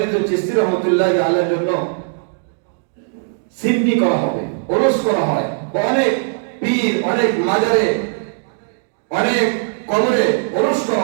চিশতি রহমতুল্লাহি আলাইহির জন্য সিমনি করা হবে, ওরস করা হয়। অনেক পীর, অনেক মাজারে, অনেক কবরে ওরস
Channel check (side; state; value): left; silent; digital silence